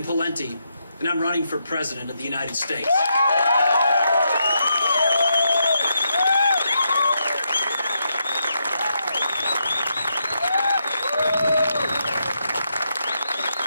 Pawlenty, and I'm running for President of the United States.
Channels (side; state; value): both; inverted; correlation -0.81